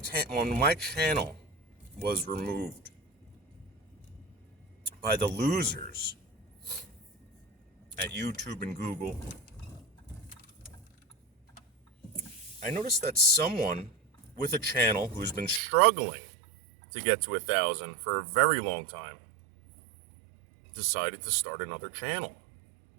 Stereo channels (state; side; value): drops out; left; at 15.6 s